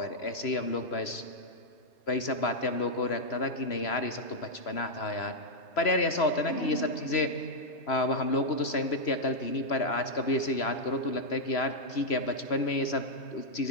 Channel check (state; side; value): late; right; 3.0 ms